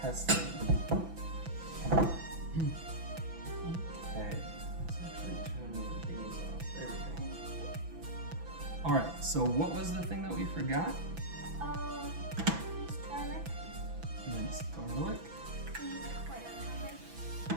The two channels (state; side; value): late; left; 6.0 ms